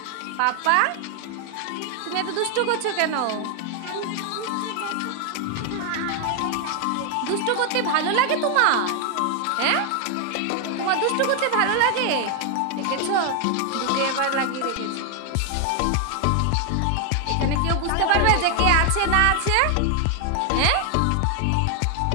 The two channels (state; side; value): different; both; correlation 0.00